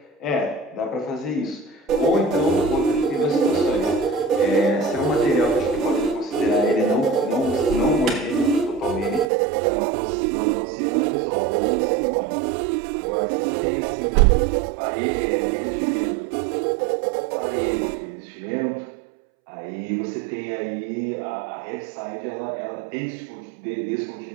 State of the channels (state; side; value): drops out; left; at 9.3 s